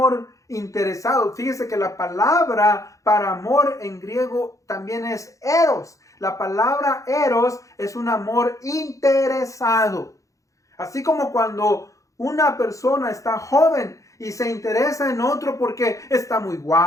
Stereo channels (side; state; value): right; late; 0.16 ms